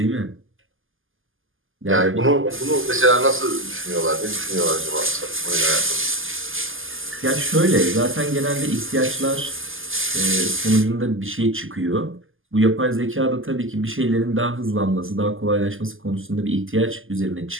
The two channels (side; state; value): left; late; 0.59 ms